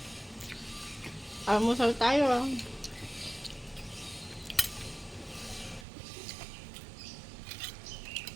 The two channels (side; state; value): left; drops out; at 5.9 s